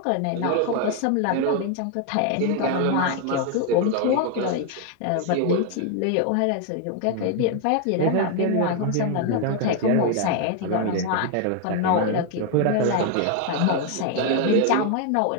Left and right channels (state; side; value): different; both; correlation 0.01